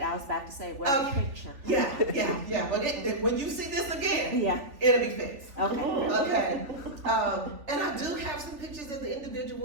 was about to say, where's the picture? Yeah, but when you see this again, Yeah. it'll be fixed. Okay. Okay. And I do have some pictures of the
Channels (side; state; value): left; late; 3.2 ms